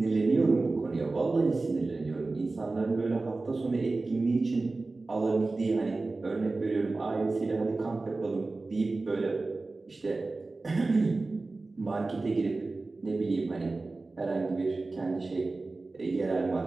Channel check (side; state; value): left; quieter; 3.4 dB